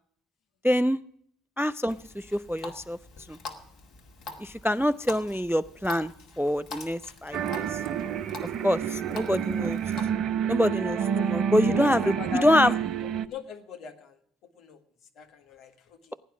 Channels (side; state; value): both; normal; correlation 0.80